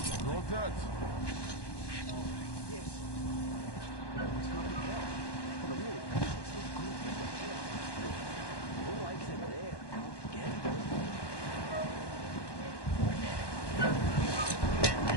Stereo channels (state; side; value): late; right; 1.1 ms